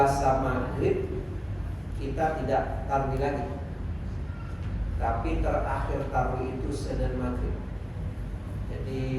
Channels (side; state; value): both; identical; correlation 1.00